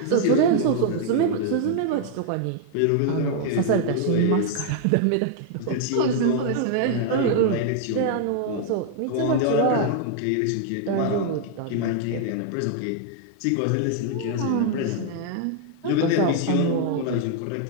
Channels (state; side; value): different; both; correlation 0.00